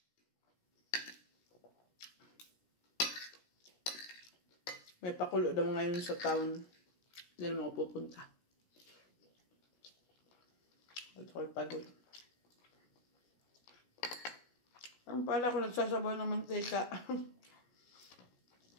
May pakulo daw ngayon sa town. Hindi naman ako pupunta. At ako'y pagod. Ang pala ko nagsasabaw ng mantika.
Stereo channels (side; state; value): right; late; 17 ms